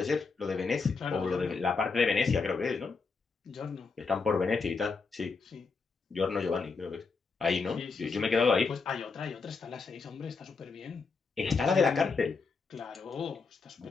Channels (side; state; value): right; quieter; 4.7 dB